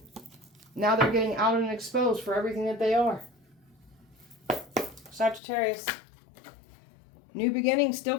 Now they're getting out and exposed for everything that they are. Sagittarius. New beginnings still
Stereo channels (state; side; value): drops out; right; at 5.4 s